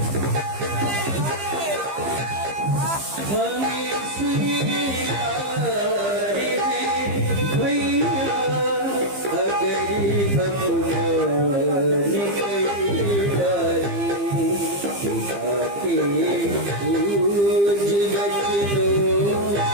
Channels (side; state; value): left; late; 15 ms